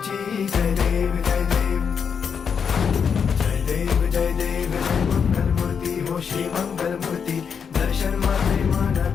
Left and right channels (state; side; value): quieter; right; 6.7 dB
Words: जय देव जय देव जय देव जय देव जय मंगल मूर्ती हो श्री मंगल मूर्ती दर्शन माझे मन